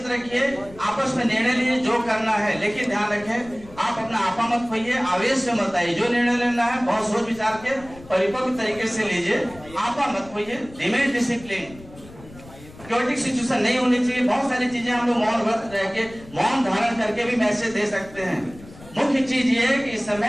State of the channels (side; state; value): left; noise; rumble, 20 dB below the sound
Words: रखिए, आपस में निर्णय लीजिए जो करना है, लेकिन ध्यान रखें आप अपना आपा मत खोइए, आवेश में मत आइए। जो निर्णय लेना है बहुत सोच विचार के परिपक्व तरीके से लीजिए, आपा मत खोइए, रिमेन डिसिप्लिन। क्योटिक सिचुएशन नहीं होनी चाहिए। बहुत सारी चीजें हम लोग मौन व्रत रह के, मौन धारण करके भी मैसेज दे सकते हैं। मुख्य चीज ये है कि इस